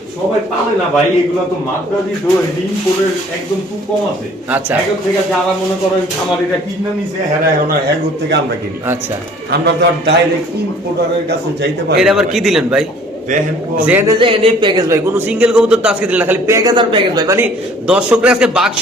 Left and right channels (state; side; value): normal; both; correlation 0.53